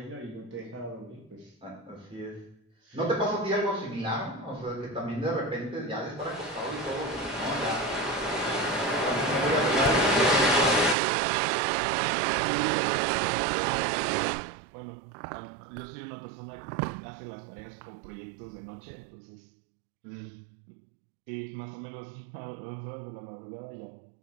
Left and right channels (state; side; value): drops out; left; at 11.0 s